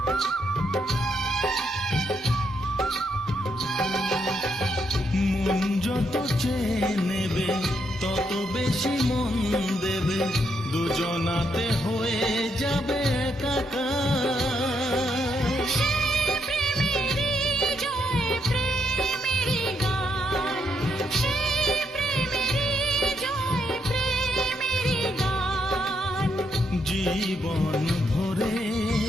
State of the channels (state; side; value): normal; both; correlation 0.77